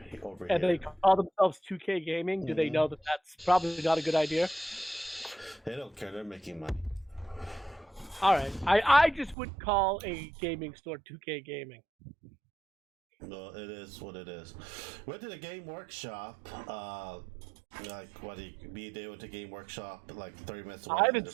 over And here. they call themselves 2K Gaming. Do they know that that's probably not a good idea? They don't care. They're making money. All right. I just would call a gaming store 2K Gaming. No, it is what it is. Went to the game workshop. Like what? Me and Dave went to game workshop like 30 minutes away. I haven't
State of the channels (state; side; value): drops out; left; at 9.3 s